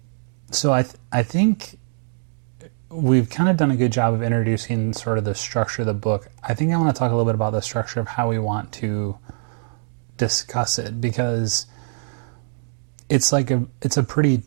so I think we've kind of done a good job of introducing sort of the structure of the book. I think I want to talk a little bit about the structure of how we want to discuss it, because it's a pretty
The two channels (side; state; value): left; silent; digital silence